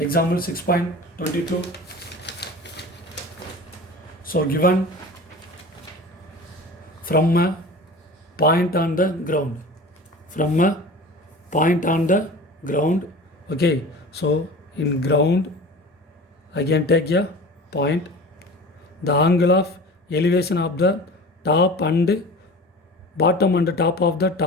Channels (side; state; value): both; normal; correlation 0.37